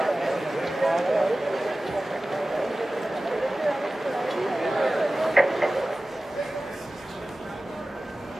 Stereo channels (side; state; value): both; normal; correlation 0.96